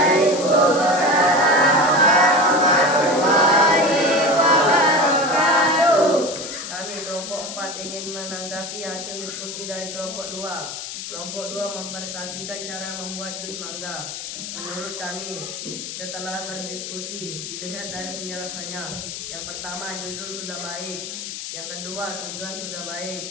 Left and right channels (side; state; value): left; noise; hiss, 8 dB below the sound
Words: Kami kelompok 4 ingin menanggapi hasil diskusi dari kelompok 2. Kelompok 2 mempresentasikan cara membuat jus mangga. Menurut kami, setelah berdiskusi, dilihat dari penjelasannya. Yang pertama, judul sudah baik. Yang kedua, tujuan sudah